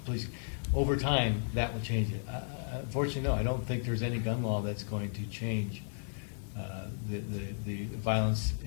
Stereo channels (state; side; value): silent; right; 55 dB below the other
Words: policing. Over time, that will change it. Unfortunately, no, I don't think there's any gun law that's going to change the violence